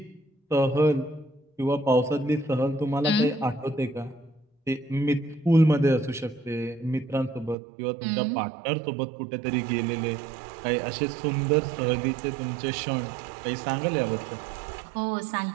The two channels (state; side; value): drops out; left; at 7.6 s